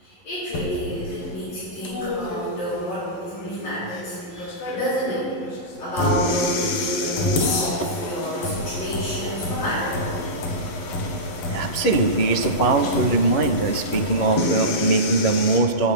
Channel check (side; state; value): right; late; 12 ms